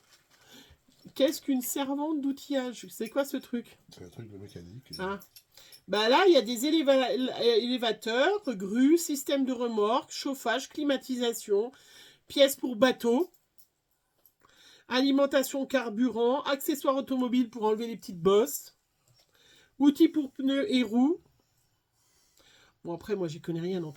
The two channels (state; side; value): identical; both; correlation 1.00